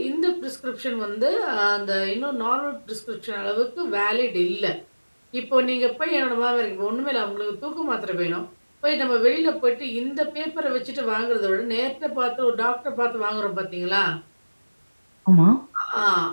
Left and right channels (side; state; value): both; inverted; correlation -1.00